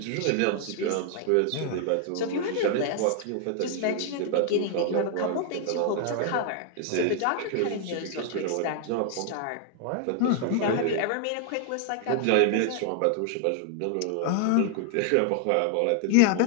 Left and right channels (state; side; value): different; both; correlation 0.00